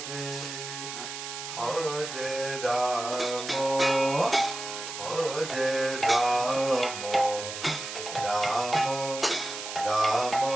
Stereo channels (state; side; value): noise; right; hiss, 8 dB below the sound